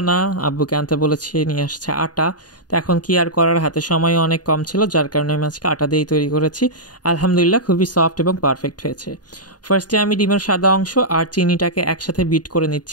না, আব্বুকে আনতে বলেছি, নিয়ে আসছে আটা। তো এখন কি আর করার, হাতে সময় অনেক কম ছিল, যার কারণে আমি আজকে আটা দিয়েই তৈরি করেছি। আলহামদুলিল্লাহ খুবই সফট এবং পারফেক্ট হয়েছে। ফার্স্টে আমি ডিমের সাদা অংশ আর চিনিটাকে একসাথে বিট করে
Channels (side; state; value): right; late; 0.69 ms